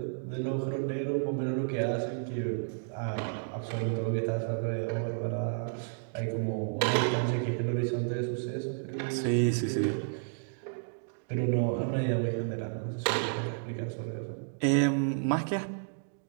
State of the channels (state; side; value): silent; left; digital silence